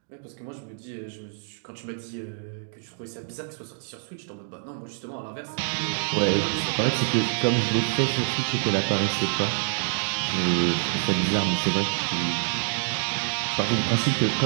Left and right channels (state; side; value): silent; left; digital silence